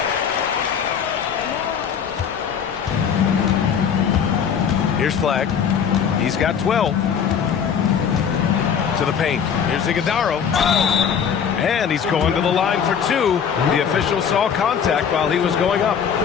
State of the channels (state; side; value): quieter; right; 7.5 dB